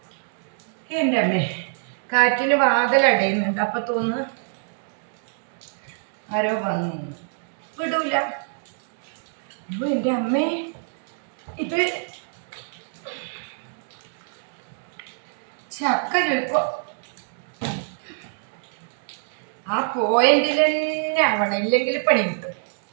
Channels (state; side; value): silent; left; digital silence